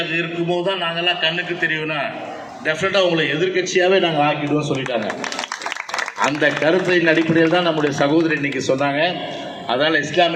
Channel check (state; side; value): identical; both; correlation 1.00